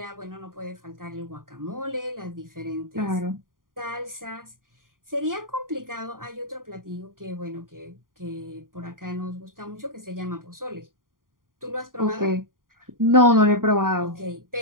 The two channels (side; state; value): left; late; 0.90 ms